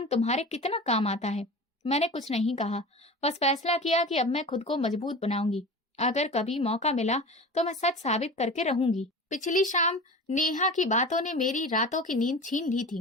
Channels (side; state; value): both; normal; correlation 0.33